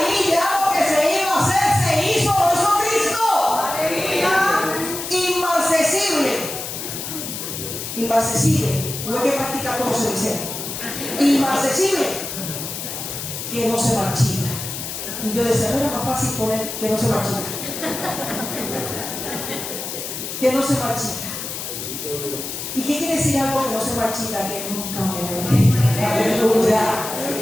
Ya lo que se iba a hacer se hizo por Jesucristo. Inmarcesible. Inmarcesible, no hay que practicar como se dice. Inmarcesible, que no se marchita. Y yo decía, no era más fácil poner que no se marchita. Que no se marchita. ¿Y qué quiere decir algo que no se marchita? Que nunca muere. Aleluya.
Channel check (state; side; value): noise; left; hiss, 6 dB below the sound